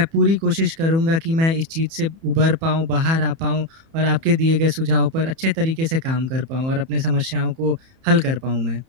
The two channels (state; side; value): late; left; 31 ms